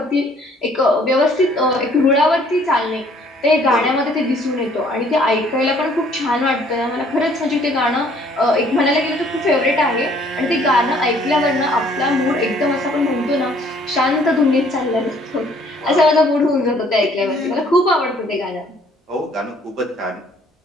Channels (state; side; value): normal; both; correlation 0.60